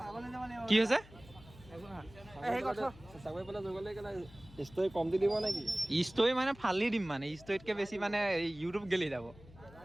কি হৈছে ষ্টৰি মানে ফালি দিম মানে ষ্টৰিতকৈ বেছি মানে ইউটিউব গেলি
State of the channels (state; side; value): noise; left; hum, 21 dB below the sound